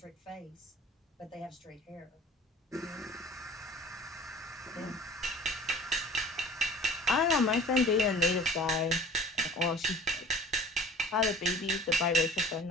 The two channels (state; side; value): normal; both; correlation 0.45